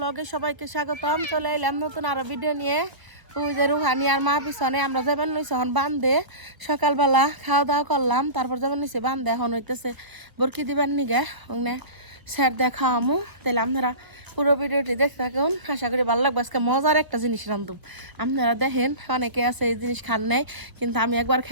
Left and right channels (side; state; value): left; late; 1.3 ms